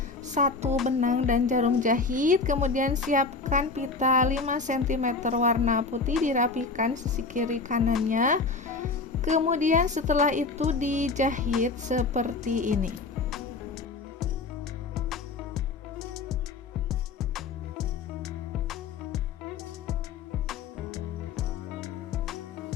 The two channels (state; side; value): quieter; right; 4.2 dB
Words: satu benang dan jarum jahit. Kemudian siapkan pita 5 cm warna putih, dirapikan sisi kiri kanannya. Kemudian setelah itu dijahit seperti ini.